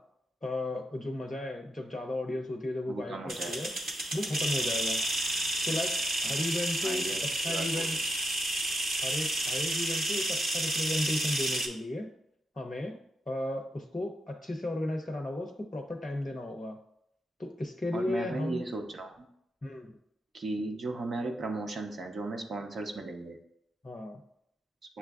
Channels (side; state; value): both; normal; correlation 0.84